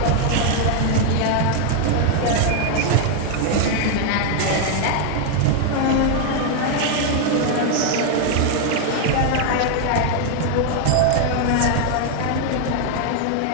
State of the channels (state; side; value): different; both; correlation 0.00